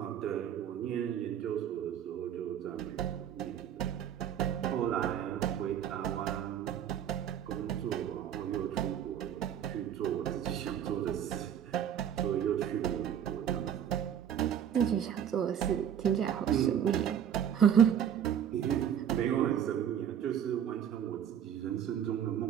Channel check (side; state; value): left; quieter; 9.3 dB